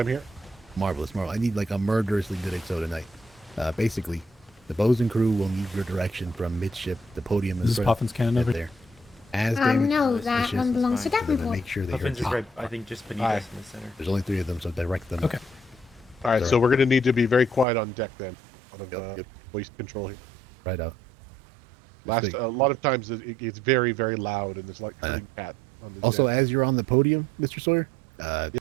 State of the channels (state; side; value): drops out; left; at 17.7 s